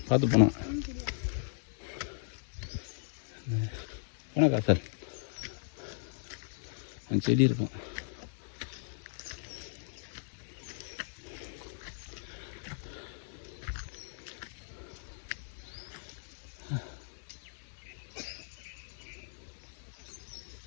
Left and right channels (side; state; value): right; silent; digital silence